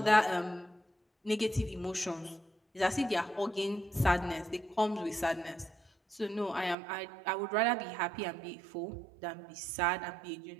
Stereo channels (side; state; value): left; drops out; at 6.8 s